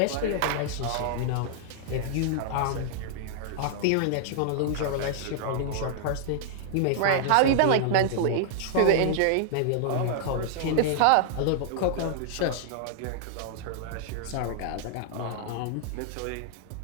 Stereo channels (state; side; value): different; both; correlation -0.01